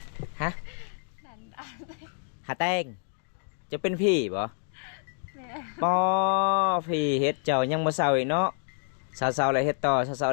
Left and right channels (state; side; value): silent; right; digital silence